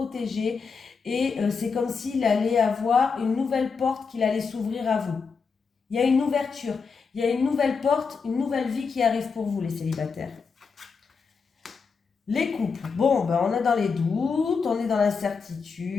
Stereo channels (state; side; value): quieter; right; 5.3 dB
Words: et c'est comme s'il allait avoir une nouvelle porte qu'il allait s'ouvrir à vous. Il y a une ouverture, il y a une nouvelle porte, une nouvelle vie qui arrive pour vous les célibataires. Les couples, bon, ben on est dans les doutes, on est dans